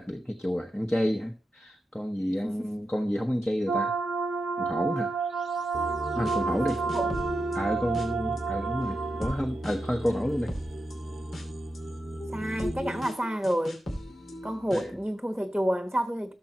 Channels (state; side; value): normal; both; correlation 0.89